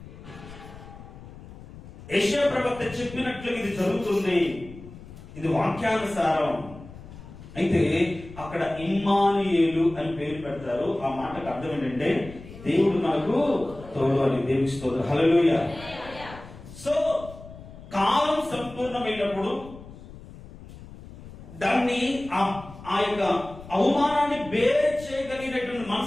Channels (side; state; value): left; noise; rumble, 16 dB below the sound